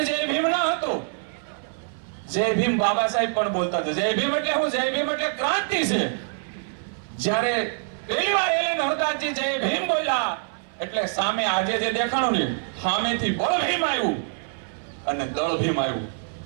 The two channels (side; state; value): left; silent; 59 dB below the other